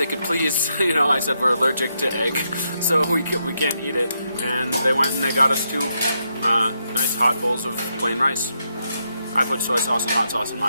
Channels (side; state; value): both; inverted; correlation -0.81